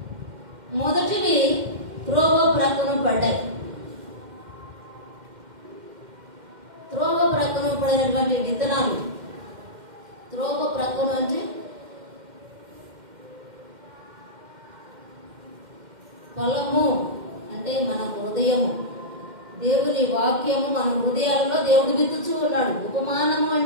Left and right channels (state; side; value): late; left; 2.1 ms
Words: మొదటివి త్రోవ ప్రక్కన పడ్డాయి. త్రోవ ప్రక్కన పడినటువంటి విత్తనాలు, త్రోవ ప్రక్కన అంటే పొలము అంటే మన హృదయము, దేవుని వాక్యము మన హృదయాలలో దేవుడు విత్తుచూ ఉన్నాడు. ఉపమానము